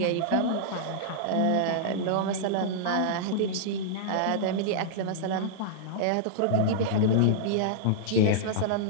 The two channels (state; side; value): different; both; correlation -0.02